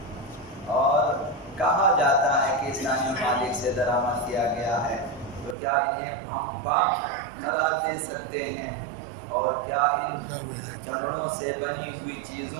اور کہا جاتا ہے کہ اسلامی ممالک سے درآمد کیا گیا ہے، تو کیا انہیں ہم پاک قرار دے سکتے ہیں؟ اور کیا ان چمڑوں سے بنی ہوئی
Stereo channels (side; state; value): left; drops out; at 5.6 s